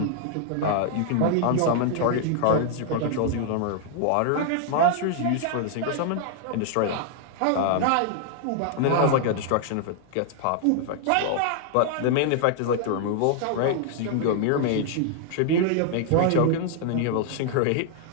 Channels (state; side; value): different; both; correlation 0.00